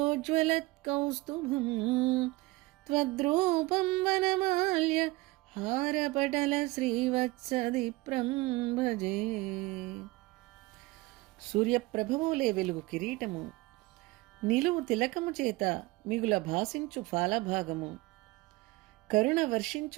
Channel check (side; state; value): left; quieter; 21.5 dB